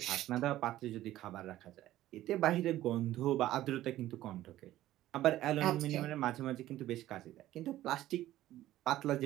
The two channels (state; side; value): quieter; left; 14.4 dB